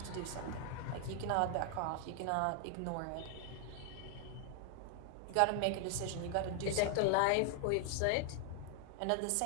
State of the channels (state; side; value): different; both; correlation 0.00